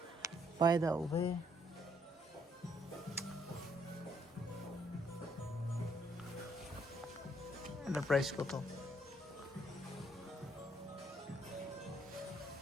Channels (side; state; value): both; normal; correlation 0.70